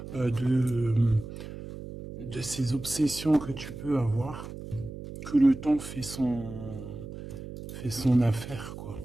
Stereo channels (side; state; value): right; noise; hum, 11 dB below the sound